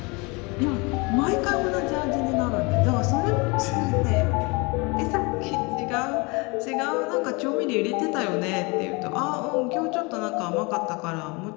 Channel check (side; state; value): right; quieter; 28.0 dB